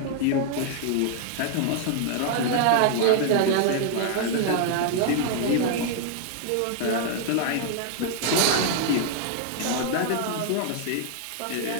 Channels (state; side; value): different; both; correlation 0.00